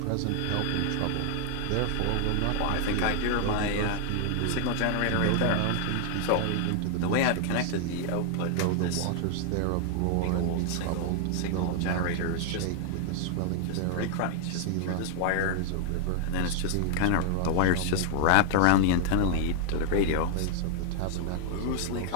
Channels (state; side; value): different; both; correlation 0.00